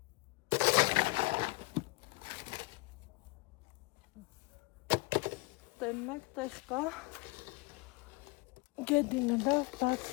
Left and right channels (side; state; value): right; quieter; 24.1 dB